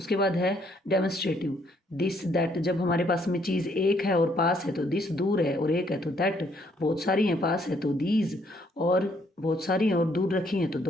बाद है डेमोन्स्ट्रेटिव, दिस, दैट। जब हमारे पास में चीज़ एक है और पास है तो दिस, दूर है और एक है तो दैट, बहुत सारी हैं पास है तो दीज, और बहुत सारी हैं और दूर रखी हैं तो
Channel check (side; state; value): both; normal; correlation 0.68